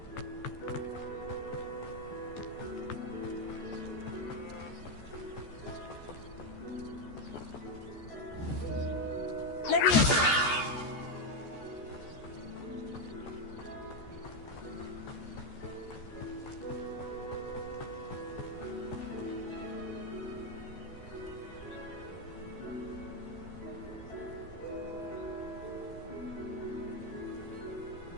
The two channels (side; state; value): right; late; 14 ms